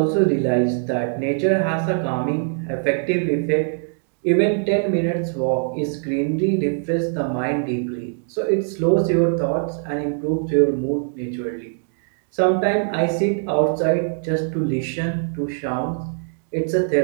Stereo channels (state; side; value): silent; left; 59 dB below the other